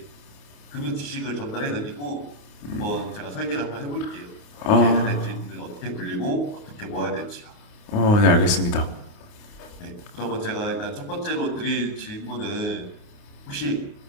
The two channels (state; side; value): late; right; 28 ms